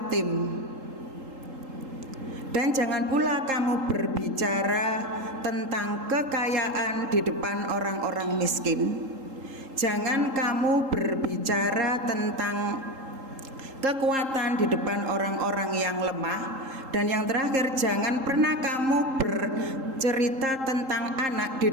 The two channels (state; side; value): late; left; 3.8 ms